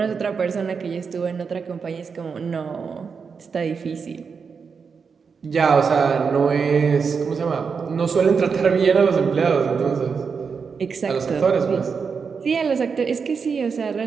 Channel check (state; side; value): quieter; left; 5.7 dB